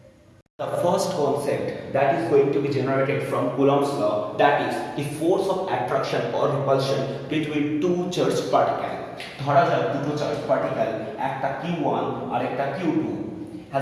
The first concept that is going to be generated from Coulomb's law, that is the force of attraction or repulsion between two charged particles. ধরা যাক দুটো charge particle, একটা q1 আর একটা q2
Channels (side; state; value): both; identical; correlation 1.00